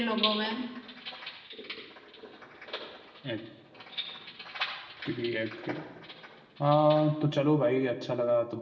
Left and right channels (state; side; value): identical; both; correlation 1.00